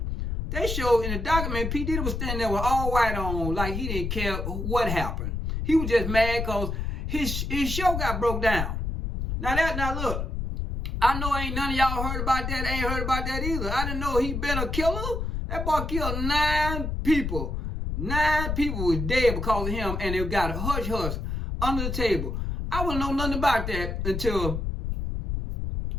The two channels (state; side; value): noise; left; rumble, 3 dB below the sound